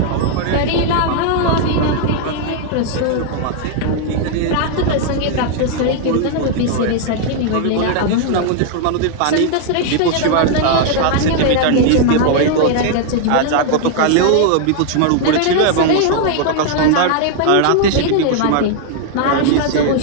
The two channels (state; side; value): different; both; correlation 0.00